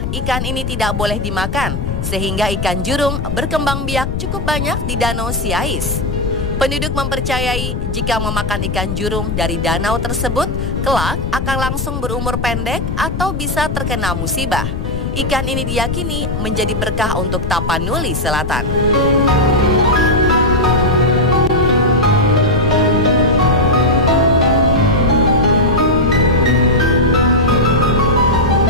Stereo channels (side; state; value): left; noise; rumble, 4 dB below the sound